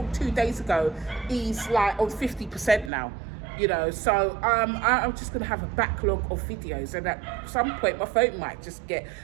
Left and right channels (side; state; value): left; drops out; at 2.9 s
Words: 2 days ago is like on 50% now, you know. So I'm just going to have a backlog of videos, and at some point my phone might just get